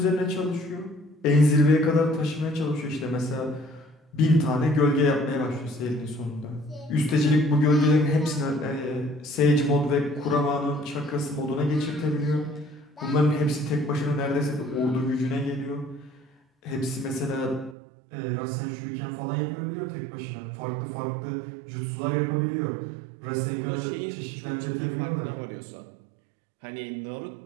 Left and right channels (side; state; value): left; drops out; at 17.8 s